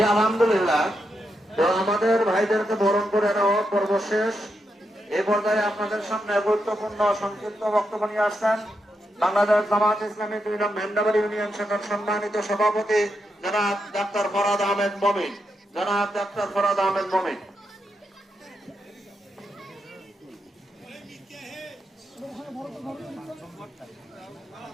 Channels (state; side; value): normal; both; correlation 0.84